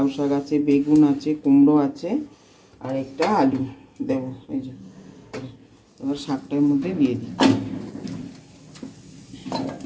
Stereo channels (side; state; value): both; identical; correlation 1.00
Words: শাক আছে, বেগুন আছে, কুমড়ো আছে, আর একটা আলু দেবো। এই যে এবার শাকটার মধ্যে দিয়ে দিই।